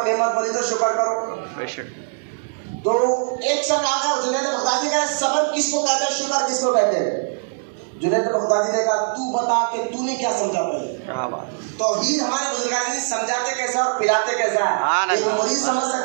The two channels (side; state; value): left; silent; 64 dB below the other